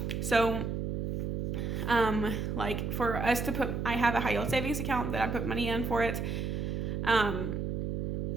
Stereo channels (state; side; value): noise; right; hum, 1 dB below the sound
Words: So like for us to put, I have a high yield savings account that I put money in for it.